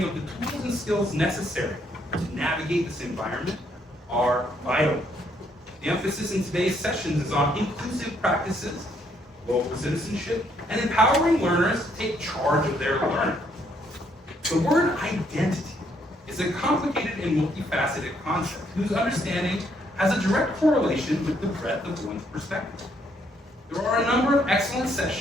of the tools and skills necessary to navigate this environment are vital. The emphasis in today's sessions is on inclusive practices, local citizenship, and empowering learners to take charge of their learning. The word identity is a complicated and multifaceted concept whose understanding has a direct correlation with the breadth of one's perspective. There are a number of excellent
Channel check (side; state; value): both; normal; correlation 0.71